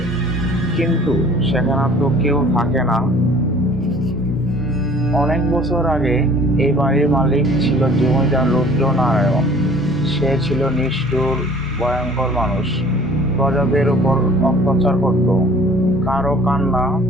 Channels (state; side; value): normal; both; correlation 0.50